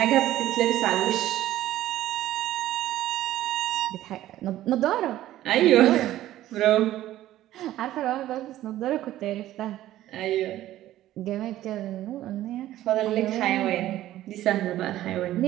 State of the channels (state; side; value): quieter; left; 14.0 dB